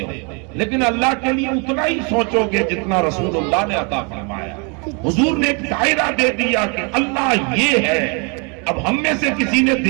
لیکن اللہ کے لیے اتنا ہی سوچو گے جتنا رسول اللہ نے عطا فرمایا۔ حضور نے ایک دائرہ دے دیا کہ اللہ یہ ہے۔ اب ہم میں سے کسی نے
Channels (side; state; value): left; quieter; 34.3 dB